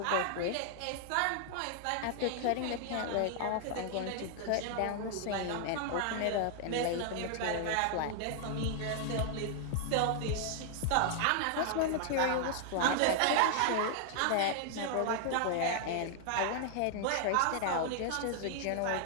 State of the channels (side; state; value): both; different; correlation 0.00